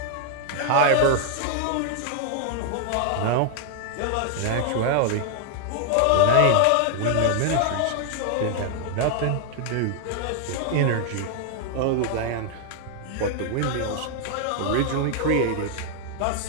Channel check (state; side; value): different; both; correlation 0.00